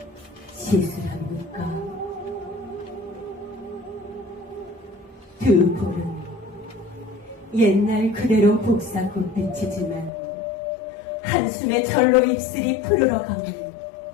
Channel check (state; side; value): drops out; right; at 10.1 s